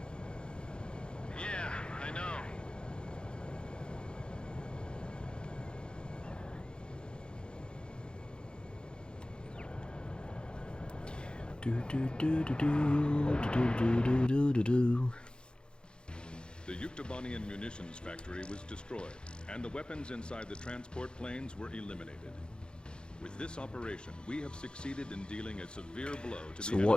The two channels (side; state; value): right; late; 0.050 ms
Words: Yeah, I know. The Yuktobanian munitions factory was destroyed, and the weapons inside the transport planes were eliminated. With this operation, we have succeeded in dealing a severe blow to So